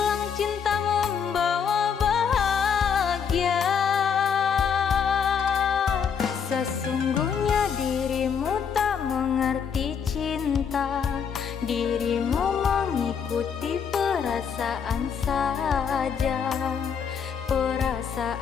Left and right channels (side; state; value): right; quieter; 6.9 dB